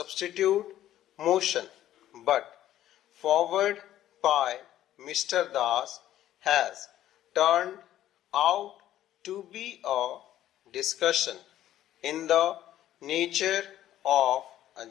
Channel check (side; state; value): right; quieter; 12.7 dB